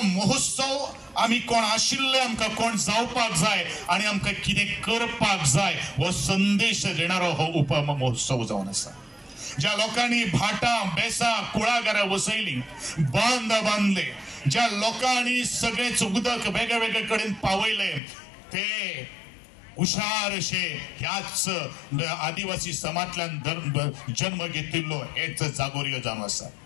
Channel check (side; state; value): right; drops out; at 18.0 s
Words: महोत्सव आम्ही कोण आशिल्ले आमकां कोण जावपाक जाय आणि आमकां कितें करपाक जाय हो संदेश देणारो हो उपमहोत्सव जावन आसा। ज्या लोकांनी भाटां बेसां कुळागरां वसयली, बांद बांधले, ज्या लोकांनी सगळेच उदक वेगळे वेगळे कडेन पावयले, ते हुशारशे ह्याच आदिवासी समाजांतल्यान जन्म घेतिल्लो हेच जागोरी जावन आसा।